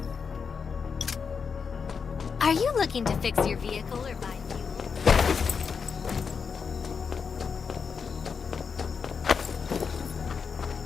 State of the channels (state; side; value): quieter; right; 5.9 dB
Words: Are you looking to fix your vehicle or buy fuel?